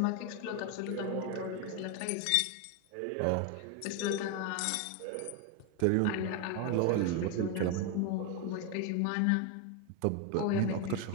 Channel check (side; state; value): both; different; correlation 0.02